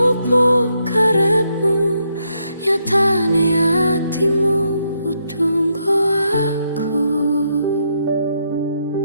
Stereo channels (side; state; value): both; inverted; correlation -0.78